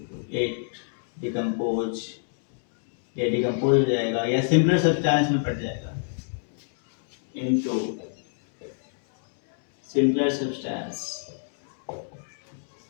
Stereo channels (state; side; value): silent; right; digital silence